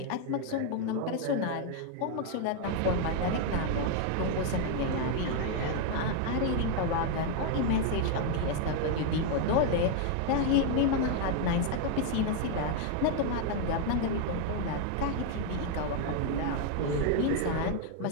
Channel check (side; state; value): both; different; correlation 0.00